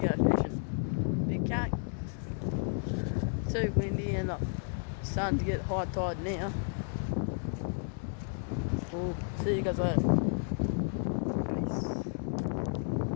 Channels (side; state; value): right; silent; 56 dB below the other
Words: go fishing. Big cat. Too windy and starting to get high tide now. We'll see you guys later.